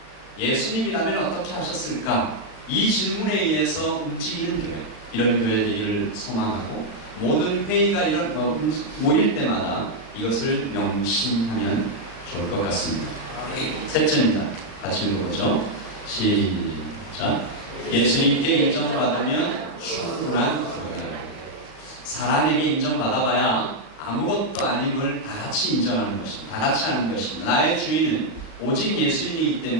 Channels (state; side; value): late; right; 36 ms